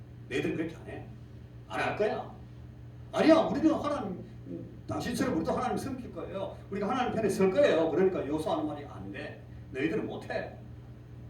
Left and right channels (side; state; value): both; identical; correlation 1.00